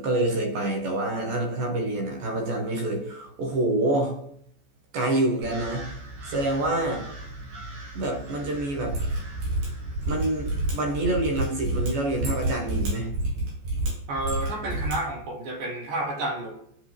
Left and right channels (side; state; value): left; late; 14 ms